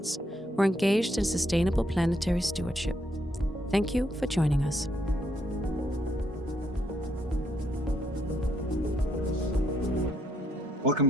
who are engaged in sustainable planetary stewardship. Thank you for joining us. Welcome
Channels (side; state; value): both; normal; correlation 0.74